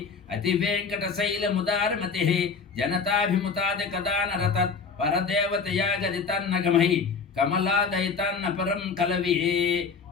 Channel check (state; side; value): quieter; right; 5.2 dB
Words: అతి వెంకట శైలముదారమతి జనతాభిముతాదికదానరతత్ పరదేవతయా గదితన్నగమై కమలాదయితన్న పరం కలవే